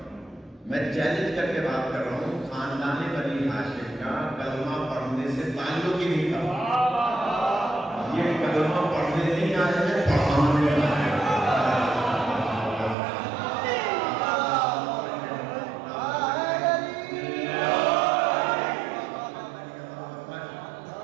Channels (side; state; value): left; drops out; at 13.0 s